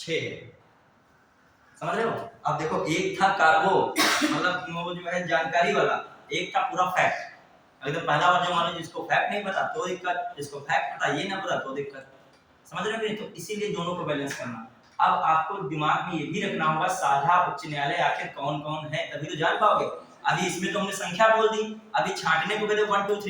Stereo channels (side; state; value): both; identical; correlation 1.00